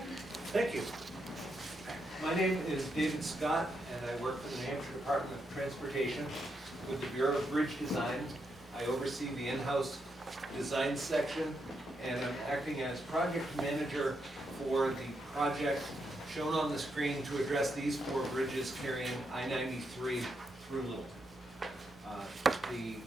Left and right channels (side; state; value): both; normal; correlation 0.82